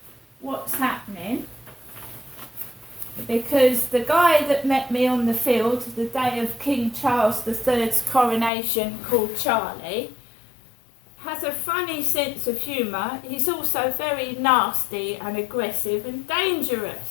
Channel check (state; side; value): drops out; right; at 8.5 s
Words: what's happening, because the guy that met me on the field the day of King Charles III's coronation, called Charlie, has a funny sense of humour. He's also very nasty and aggressive and